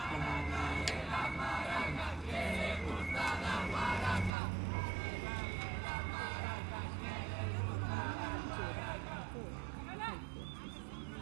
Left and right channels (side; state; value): left; drops out; at 4.3 s